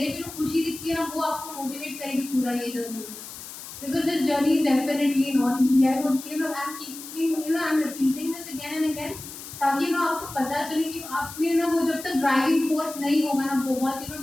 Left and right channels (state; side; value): noise; left; hiss, 13 dB below the sound